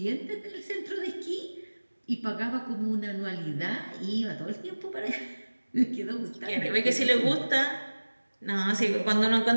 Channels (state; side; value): inverted; both; correlation -1.00